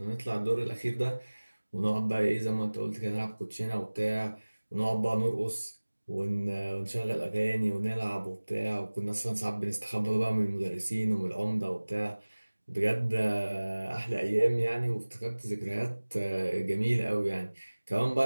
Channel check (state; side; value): inverted; both; correlation -1.00